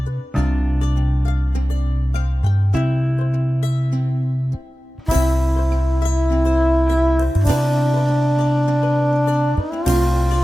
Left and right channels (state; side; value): normal; both; correlation 0.96